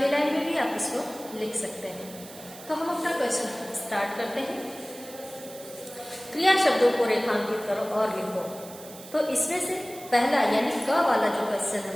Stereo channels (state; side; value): noise; right; hiss, 17 dB below the sound